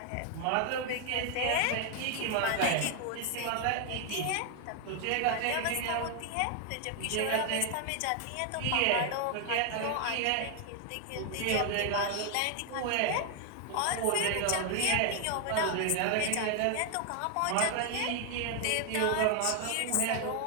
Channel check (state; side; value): different; both; correlation 0.00